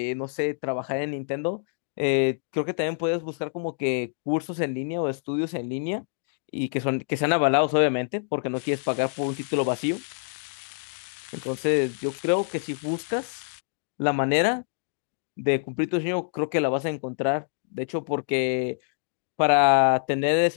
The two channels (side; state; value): right; silent; digital silence